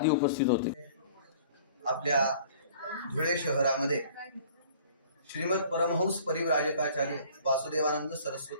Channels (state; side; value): inverted; both; correlation -0.51